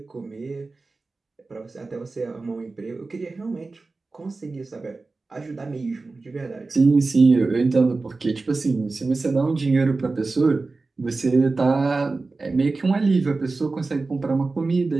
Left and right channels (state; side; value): quieter; left; 3.7 dB